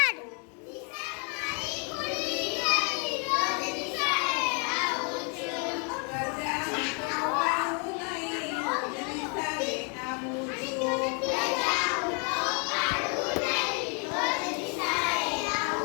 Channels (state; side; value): quieter; right; 37.7 dB